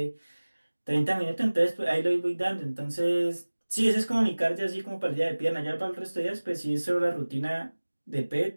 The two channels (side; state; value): both; inverted; correlation -1.00